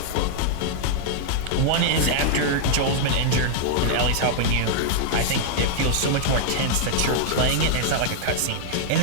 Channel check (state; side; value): different; both; correlation -0.01